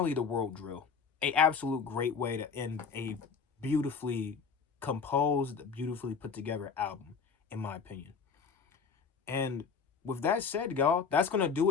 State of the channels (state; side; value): quieter; right; 5.7 dB